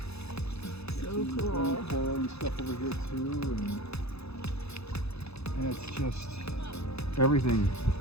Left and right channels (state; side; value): late; right; 0.79 ms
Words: So cool. Coral and stuff over here too, and it's just everything.